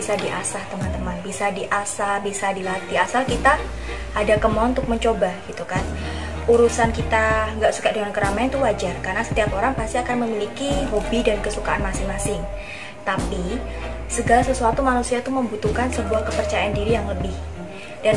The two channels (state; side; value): identical; both; correlation 1.00